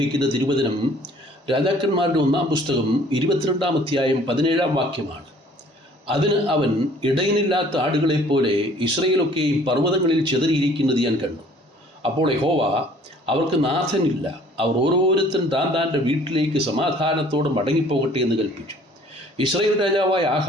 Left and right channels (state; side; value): normal; both; correlation 0.55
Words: തിരുവചനം രാജാക്കന്മാരുടെ 1-ാം പുസ്തകം 22-ാം അധ്യായം 17-ാം വാക്യമാണ്. അതിന് അവൻ, ഇടയനില്ലാത്ത ആടുകളെപ്പോലെ ഇസ്രയേലൊക്കെയും പർവ്വതങ്ങളിൽ ചിതറിയിരിക്കുന്നത് ഞാൻ കണ്ടു. അപ്പോൾ യഹോവ, അവർക്ക് നാഥനില്ല, അവർ ഓരോരുത്തൻ താൻ്റെ വീട്ടിലേക്ക് സമാധാനത്തോടെ മടങ്ങിപ്പോകട്ടെ എന്ന് കൽപ്പിച്ചു. ഇസ്രായേൽ രാജാവായ